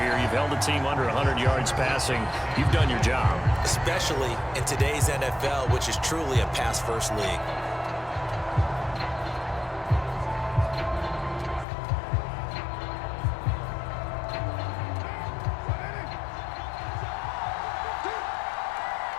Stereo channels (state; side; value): drops out; right; at 11.7 s